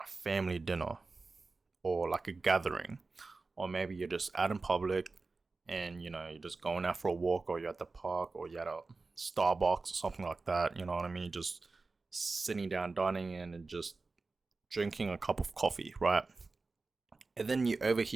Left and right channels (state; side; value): quieter; left; 3.8 dB